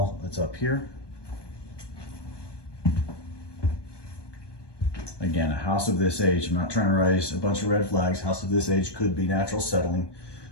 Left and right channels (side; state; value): right; late; 1.2 ms